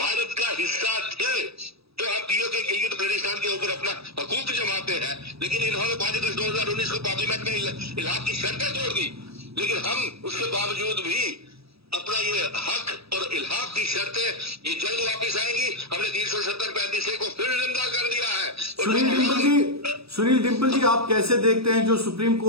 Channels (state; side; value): late; left; 0.77 ms